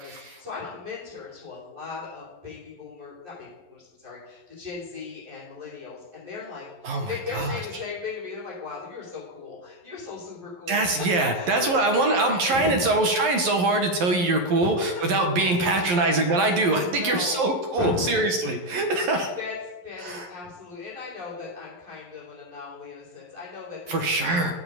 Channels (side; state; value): left; late; 11 ms